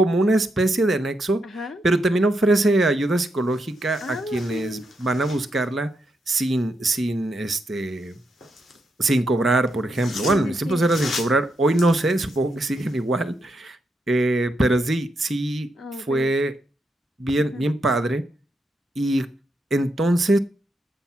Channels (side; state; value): both; normal; correlation 0.82